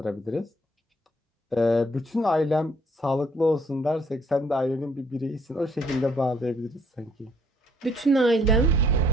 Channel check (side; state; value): both; normal; correlation 0.65